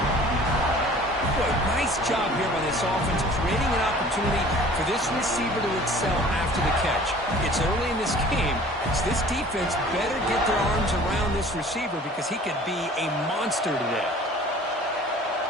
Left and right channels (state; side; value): normal; both; correlation 0.48